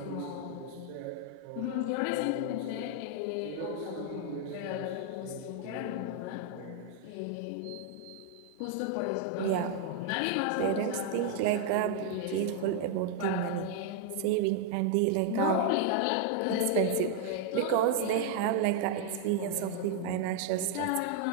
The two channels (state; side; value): different; both; correlation 0.00